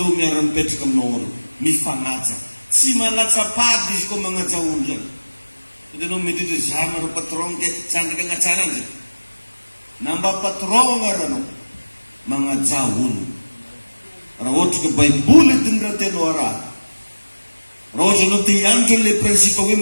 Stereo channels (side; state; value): both; inverted; correlation -1.00